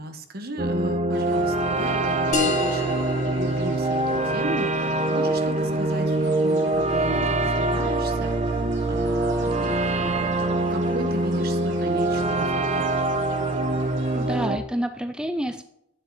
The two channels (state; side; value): normal; both; correlation 0.45